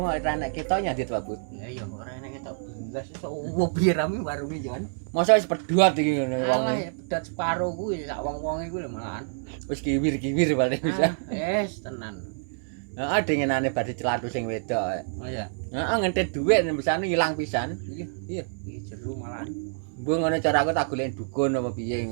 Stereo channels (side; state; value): left; silent; digital silence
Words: ora nek ketok nyadit Pak Bu. Lah iya ora enek ketok. Jelas iso piye rame warunge jangan. Masa wis pedhuat iki ngono wong. Alah pedat separo kuwi sak wong-wong iku lho malahan. Wis kiwir-kiwir paling bisa. Tenan. Heeh dengenane badhe celatu sing wedok. Oh iya. Heeh ngentit dhuwit misane ilang pisan. Iya. Iki jero malahan. Mbok ngono cara aku tak golek dukun apa piye